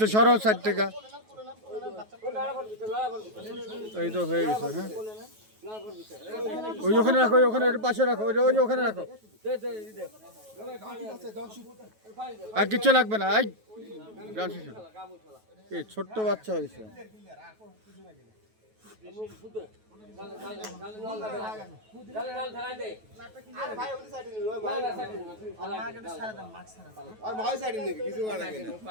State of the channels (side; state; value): left; late; 9.3 ms